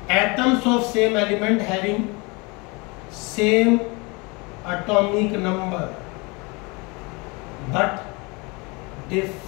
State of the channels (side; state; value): right; quieter; 27.7 dB